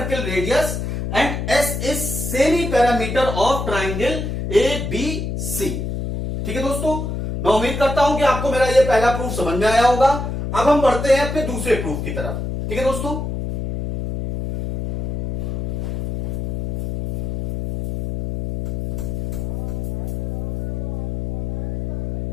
radius and S is semi parameter of triangle A B C. ठीक है दोस्तों, मैं उम्मीद करता हूं कि आपको मेरा ये पहला प्रूफ समझ में आया होगा। अब हम बढ़ते हैं अपने दूसरे प्रूफ की तरफ। ठीक है दोस्तों,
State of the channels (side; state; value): left; noise; hum, 2 dB below the sound